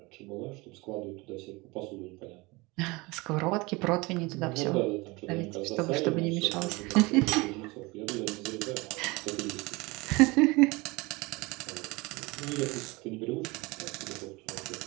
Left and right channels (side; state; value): left; quieter; 24.2 dB